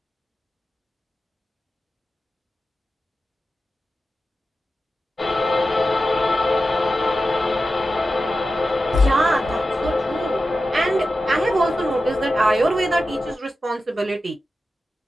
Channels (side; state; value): both; normal; correlation 0.92